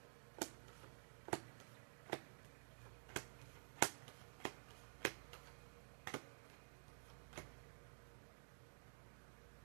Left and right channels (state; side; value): silent; left; digital silence